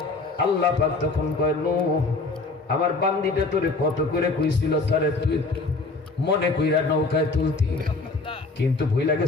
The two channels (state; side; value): quieter; right; 3.6 dB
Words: আল্লাহ পাক তখন কয় নূহ আমার বান্দিটা তোরে কত করে কইছিল তারে তুই মনে কইরা নৌকায় তুলতি, কিন্তু ভুইলা